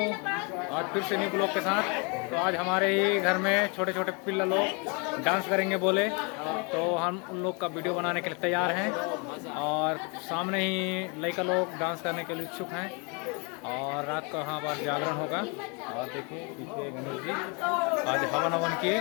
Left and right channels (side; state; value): right; quieter; 32.9 dB